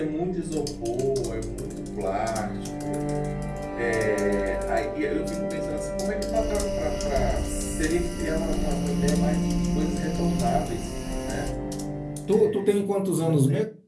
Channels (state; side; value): identical; both; correlation 1.00